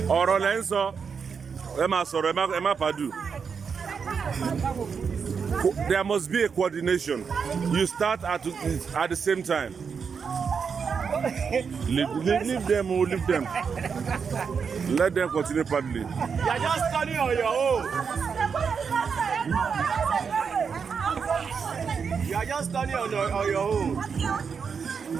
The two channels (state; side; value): quieter; left; 6.1 dB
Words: Ọ̀rọ̀ lẹ́ ń sọ. Ẹ máa sọ̀rọ̀, ẹ má pàdù. There must be a coordination. You start at the same time. Leave them. Let them continue paddling. You are just turning on your own. You are just turning on your own.